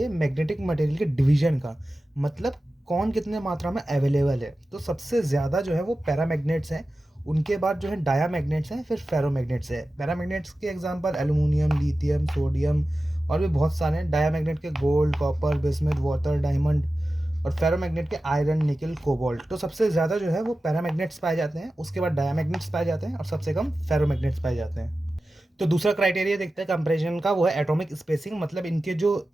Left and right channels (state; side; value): normal; both; correlation 0.94